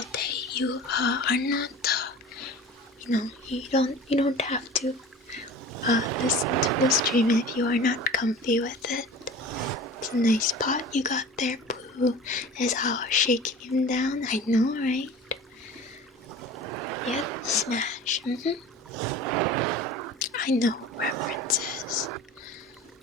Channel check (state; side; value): normal; both; correlation 0.39